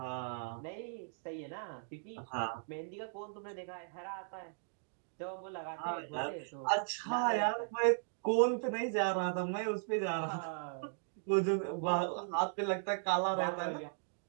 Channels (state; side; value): silent; left; digital silence